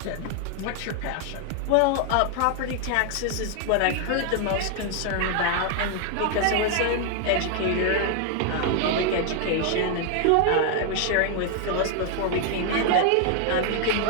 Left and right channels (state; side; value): different; both; correlation 0.00